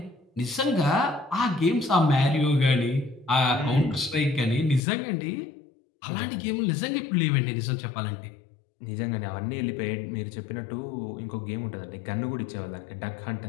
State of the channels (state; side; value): drops out; right; at 4.8 s